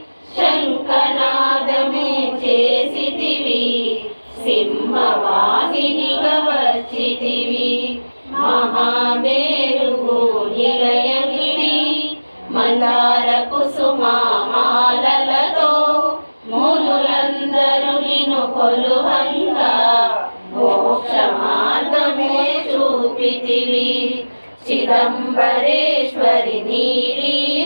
శంఖనాదము చేసితివి సింహవాహినిగా వచ్చితివి మహామేరుగు నిలయనివి మందార కుసుమ మాలలతో మునులందరూ కొలువంగా మోక్ష మార్గమే చూపితివి చిదంబరేశ్వరి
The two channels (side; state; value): both; inverted; correlation -1.00